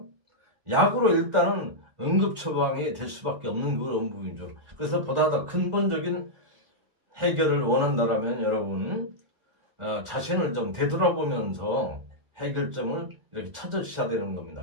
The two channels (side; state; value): left; late; 1.4 ms